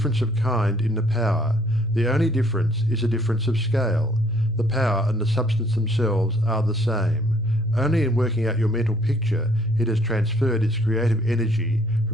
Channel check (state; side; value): noise; left; hum, 26 dB below the sound